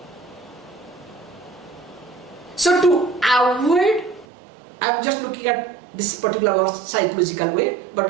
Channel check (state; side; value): drops out; left; at 4.2 s